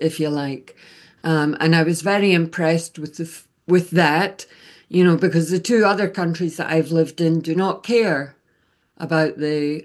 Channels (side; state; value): both; identical; correlation 1.00